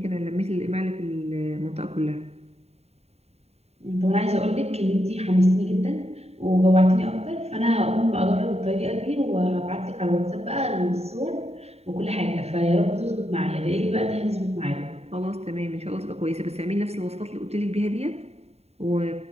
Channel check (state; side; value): late; left; 0.30 ms